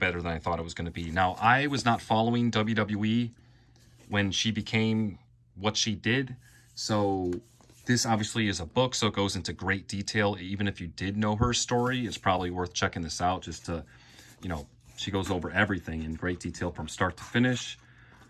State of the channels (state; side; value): identical; both; correlation 1.00